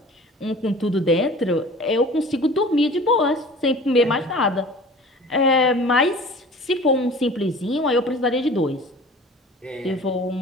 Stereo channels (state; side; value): normal; both; correlation 0.43